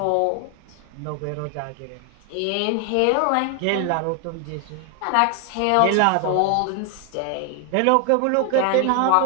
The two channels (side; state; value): both; different; correlation 0.00